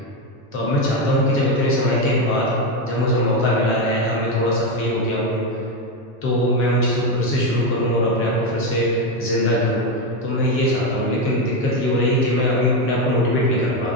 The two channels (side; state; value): both; normal; correlation 0.10